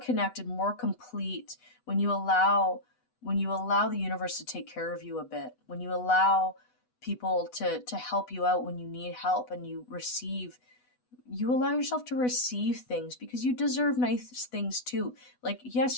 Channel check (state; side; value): late; right; 8.1 ms